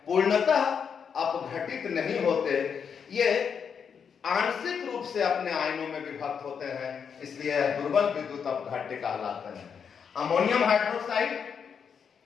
पूर्णतः अपघटित नहीं होते। ये आंशिक रूप से अपने आयनों में विभक्त होते हैं, इसलिए दुर्बल विद्युत अपघट्य कहलाते हैं। अमोनियम हाइड्रोक्साइड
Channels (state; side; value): quieter; right; 6.8 dB